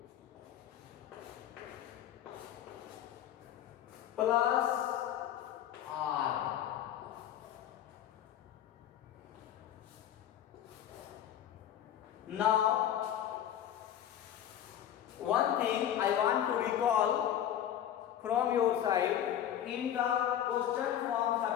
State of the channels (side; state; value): right; quieter; 10.7 dB